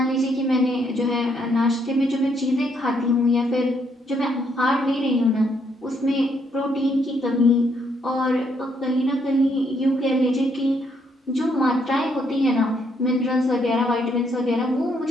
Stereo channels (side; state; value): both; normal; correlation 0.73